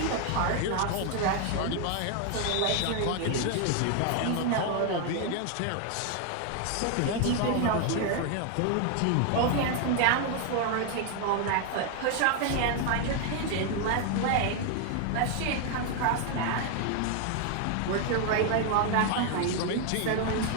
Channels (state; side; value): different; both; correlation 0.01